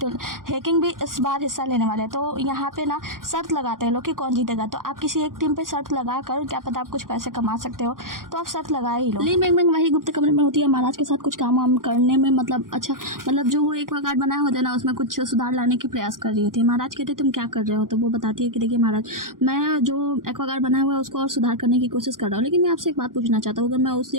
भी इस बार हिस्सा लेने वाले हैं। तो यहाँ पे ना शर्त लगाते हैं लोग कि कौन जीतेगा। तो आप किसी एक टीम पे शर्त लगा कर क्या पता आप कुछ पैसे कमा सकते हो, तो आप शर्त लगाए ही लो। ली मिंग वही गुप्त कमरे में होती है, महाराज के साथ कुछ काम वाम करने में मतलब जो वो एक्वागार्ड बनाया होता है ना उसमें कुछ सुधार लाने की प्रयास कर रही होती है। महाराज कहते हैं तुम क्या कर रहे हो, तो वो बताती है कि देखिए महाराज मैं जो एक्वागार्ड बनाया हुआ है उसको और सुधार करने की कोशिश कर रहा हूँ, लेकिन मैं आपसे एक बात पूछना चाहता हूँ, अगर मैं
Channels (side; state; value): left; late; 0.90 ms